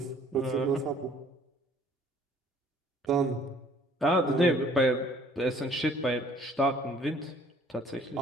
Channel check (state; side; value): normal; both; correlation 0.57